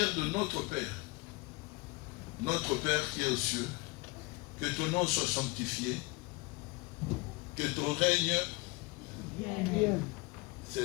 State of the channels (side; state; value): right; quieter; 26.0 dB